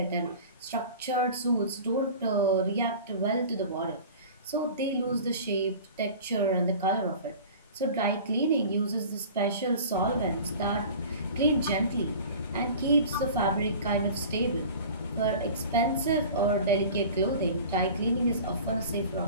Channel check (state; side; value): inverted; both; correlation -0.40